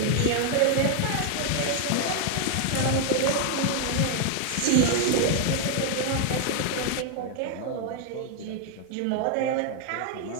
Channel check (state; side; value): different; both; correlation 0.00